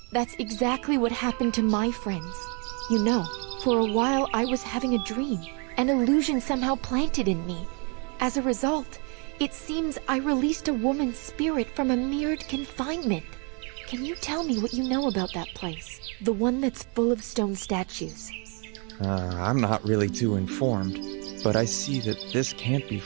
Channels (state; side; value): quieter; left; 34.6 dB